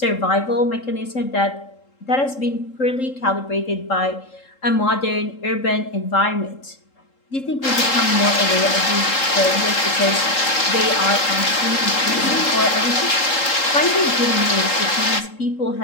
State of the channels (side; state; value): right; late; 3.7 ms